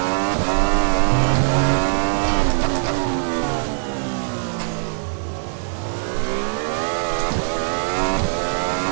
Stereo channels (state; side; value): silent; left; 65 dB below the other